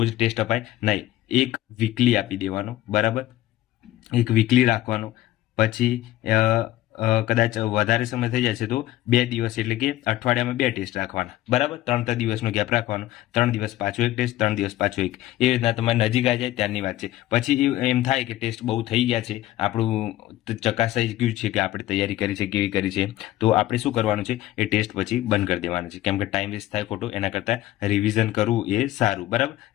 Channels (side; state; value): right; quieter; 15.1 dB